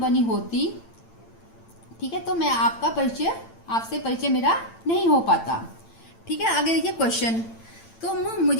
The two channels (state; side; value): late; right; 8.9 ms